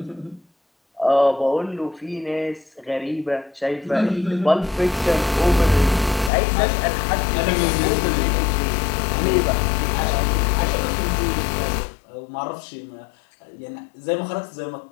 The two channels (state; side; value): drops out; right; at 6.3 s